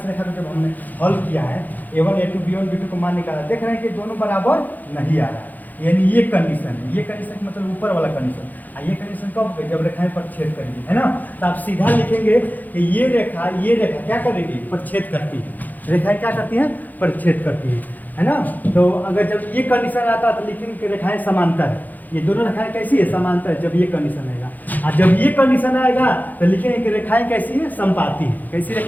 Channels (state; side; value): late; right; 0.083 ms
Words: को जब हमने हल किया है, A1 A2 B1 B2 को मान निकाला, देख रहे हैं कि दोनों बराबर नहीं आ रहा है, यानी ये कंडीशन है। ये कंडीशन मतलब ऊपर वाला कंडीशन, ये कंडीशन कब? जब रेखाएं प्रतिच्छेद करेगी, है ना। तो आप सीधा लिखेंगे कि ये रेखा क्या करेगी? प्रतिच्छेद करती है। रेखाएं क्या करती हैं? प्रतिच्छेद करती है ना। तो अगर जब ये कंडीशन आता तो लिखेंगे कि रेखाएं समांतर है। ये दोनों रेखाएं कैसी है? समांतर है, जब ये कंडीशन आएगा। और जब ये कंडीशन आएगा तो लिखेंगे कि रेखाएं कैसी है? संपाती है। कैसी